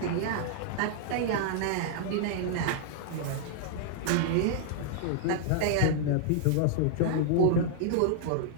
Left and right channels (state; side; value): different; both; correlation -0.01